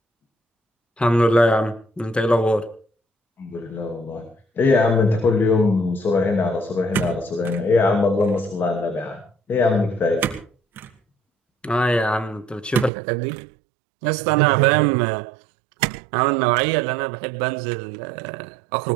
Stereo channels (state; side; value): drops out; left; at 12.9 s